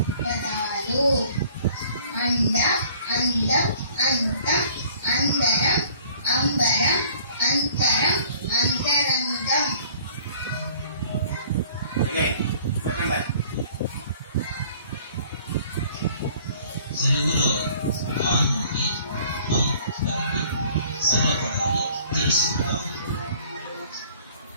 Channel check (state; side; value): inverted; both; correlation -0.53